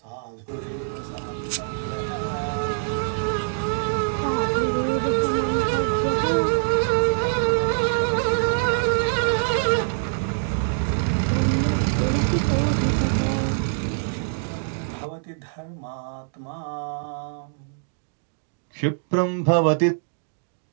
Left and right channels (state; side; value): silent; left; digital silence